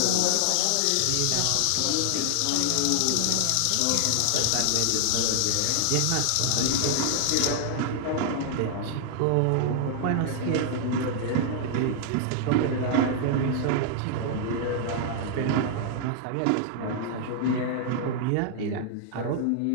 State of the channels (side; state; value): both; different; correlation -0.01